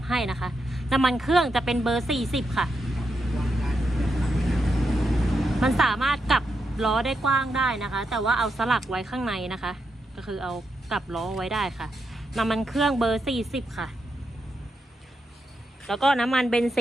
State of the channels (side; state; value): both; normal; correlation 0.84